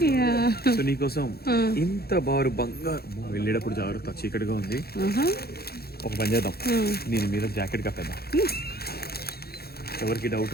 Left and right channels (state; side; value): late; right; 0.46 ms